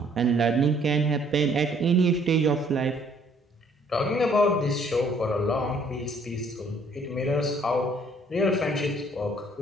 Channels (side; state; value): both; normal; correlation 0.62